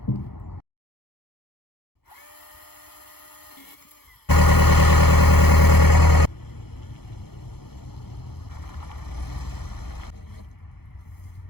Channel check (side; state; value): right; late; 0.96 ms